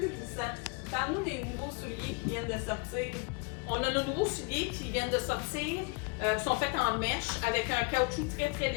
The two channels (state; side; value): quieter; right; 29.2 dB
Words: glissant. Parle-nous des nouveaux souliers qui viennent de sortir. On a nos nouveaux souliers qui viennent de sortir, qui sont faits en mèche avec un caoutchouc très très